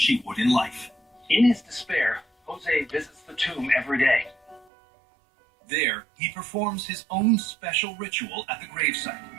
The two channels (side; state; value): left; drops out; at 4.7 s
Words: would in life. In his despair, Jose visits the tomb every day. There, he performs his own special ritual at the gravesite.